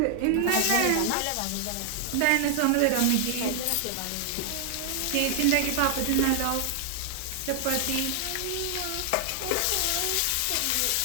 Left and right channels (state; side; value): different; both; correlation 0.00